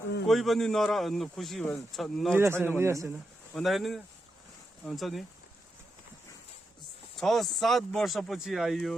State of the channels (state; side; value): normal; both; correlation 0.86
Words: कोही पनि खुसी छैन भन्दाखेरि हुन्छ नि 6-7 वर्षपछि आइयो